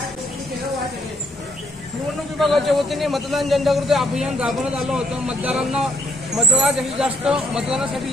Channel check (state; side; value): normal; both; correlation 0.68